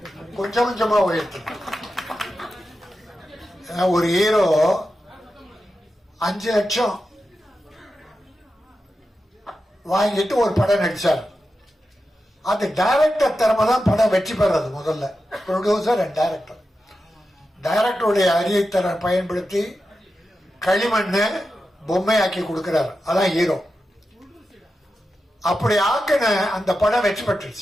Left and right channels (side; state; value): both; normal; correlation 0.90